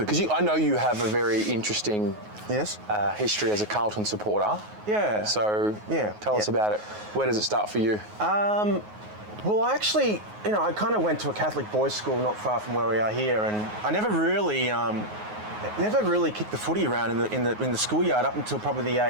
Because I know you have a very interesting Yes. history as a Carlton supporter. Yeah. So Yeah. tell us about it. Where does it start for you? Well, I actually, I kind of went to a Catholic boys' school not far from where we are here, and I never really kicked the footy around in the schoolyard up until probably the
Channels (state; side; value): late; left; 9.5 ms